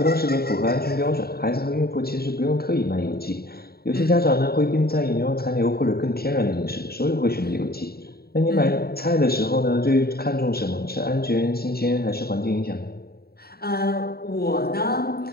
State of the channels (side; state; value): right; late; 0.45 ms